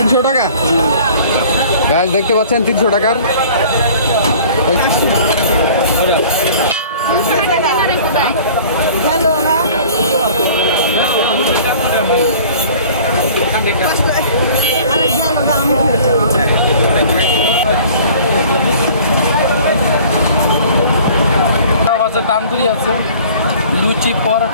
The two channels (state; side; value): inverted; both; correlation -0.48